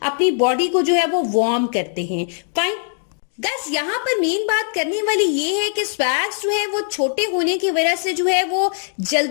अपनी बॉडी को जो है वो वार्म करते हैं। फाइन गाइस, यहाँ पर मेन बात करने वाली ये है कि स्वैग्स जो है वो छोटे होने की वजह से जो है वो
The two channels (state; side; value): silent; right; digital silence